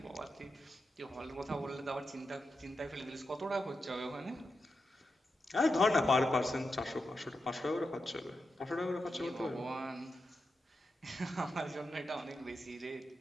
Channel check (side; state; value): both; normal; correlation 0.88